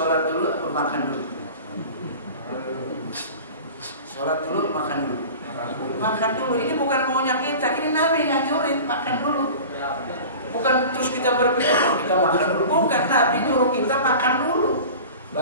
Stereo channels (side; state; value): both; inverted; correlation -0.37